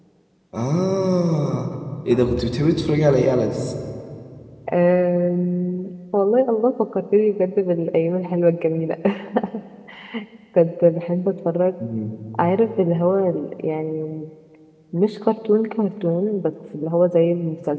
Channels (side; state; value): both; identical; correlation 1.00